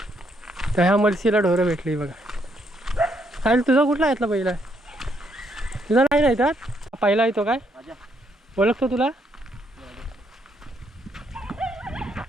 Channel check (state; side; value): normal; both; correlation 0.73